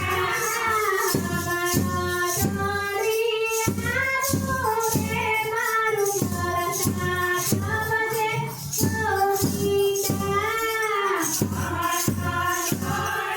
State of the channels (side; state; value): both; identical; correlation 1.00